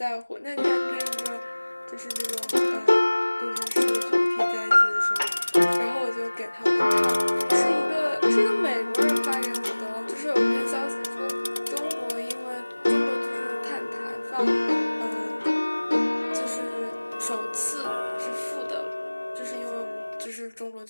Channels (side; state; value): both; inverted; correlation -1.00